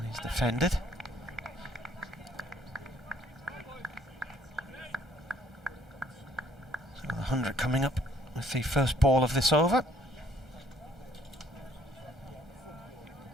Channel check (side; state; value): both; normal; correlation 0.62